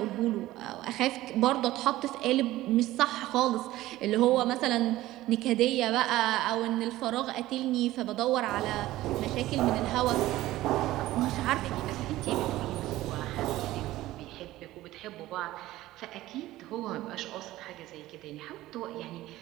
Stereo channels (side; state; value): left; quieter; 16.2 dB